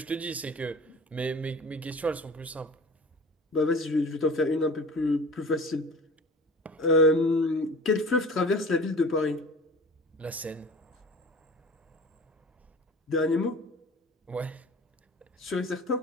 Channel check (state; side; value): normal; both; correlation 0.41